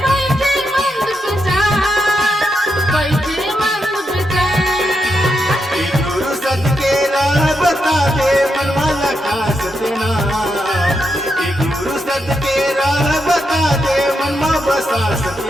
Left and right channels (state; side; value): normal; both; correlation 0.83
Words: बता दे मनमाला खा सतना, गुरु सद के राह बता दे मनमा बसा